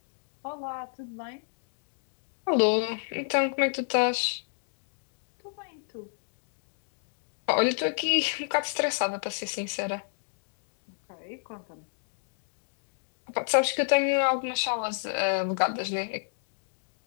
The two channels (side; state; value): right; silent; digital silence